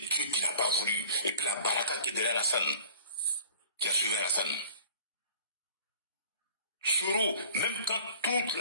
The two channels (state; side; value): inverted; both; correlation -0.47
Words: qui n'a pas voulu. Et puis la baraka qui est derrière Alassane, qui a suivi Alassane. Soro, même quand toute